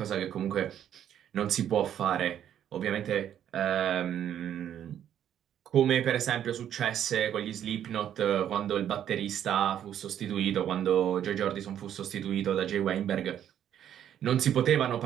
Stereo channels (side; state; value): left; quieter; 10.1 dB